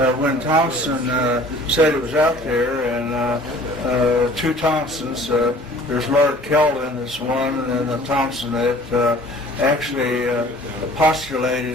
when Thompson said it was out there, and 2 Thompsons, there's Lord Kelvin is one, and then the Thompson that actually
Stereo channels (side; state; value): both; normal; correlation 0.50